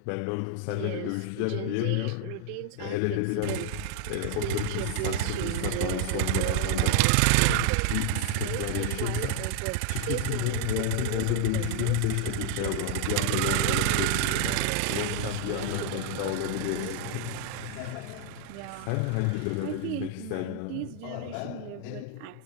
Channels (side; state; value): both; different; correlation 0.00